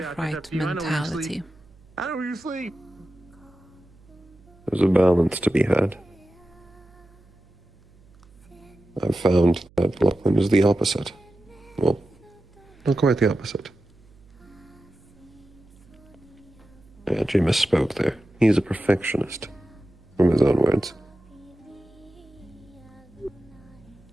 right mentality. I know where you sleep. There's a balance to be had. I've found that Lachlan is the opposite. Well, not quite the opposite. I actually misspoke there. He's a perfectionist, from his own words.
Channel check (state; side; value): noise; right; hum, 27 dB below the sound